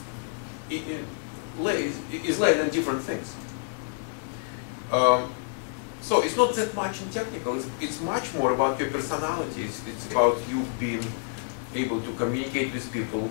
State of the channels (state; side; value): silent; right; 59 dB below the other